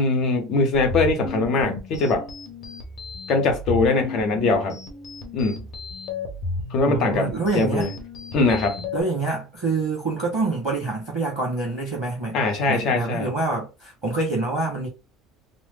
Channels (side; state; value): both; normal; correlation 0.35